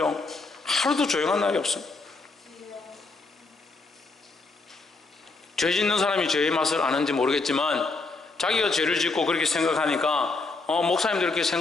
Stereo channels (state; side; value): quieter; right; 3.7 dB